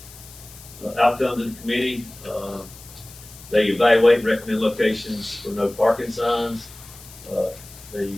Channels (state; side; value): noise; left; hiss, 19 dB below the sound